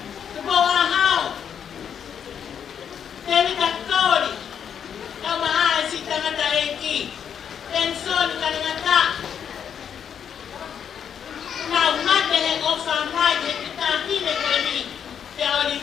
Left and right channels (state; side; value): quieter; right; 8.1 dB